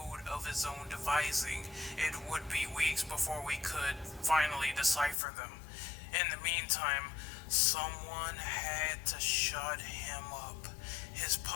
of his own devising. It would be weeks before we could finally decipher them. In the meantime, someone had to shut him up. His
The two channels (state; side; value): drops out; right; at 5.2 s